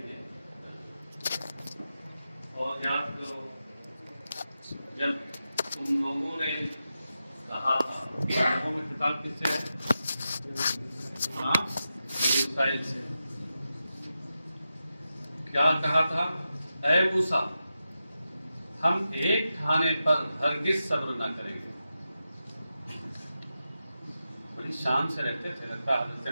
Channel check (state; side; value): inverted; both; correlation -0.90